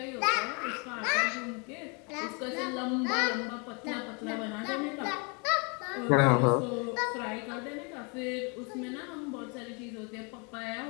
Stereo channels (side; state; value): right; quieter; 33.5 dB